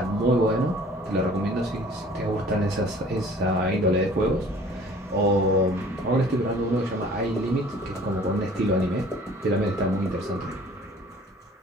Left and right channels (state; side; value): normal; both; correlation 0.51